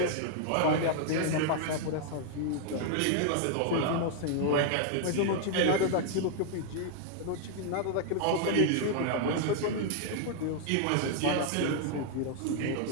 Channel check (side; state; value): both; different; correlation 0.00